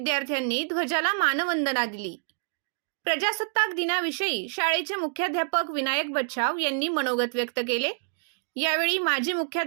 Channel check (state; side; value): silent; left; digital silence